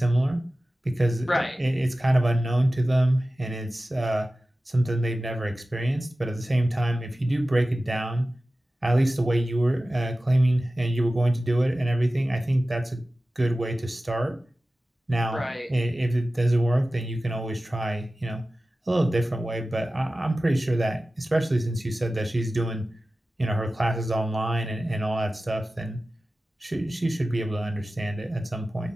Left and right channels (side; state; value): both; normal; correlation 0.95